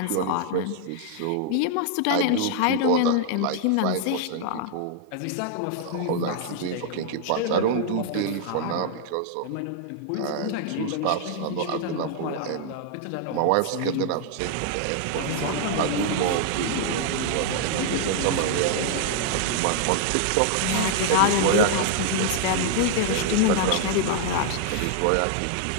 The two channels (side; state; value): both; different; correlation -0.01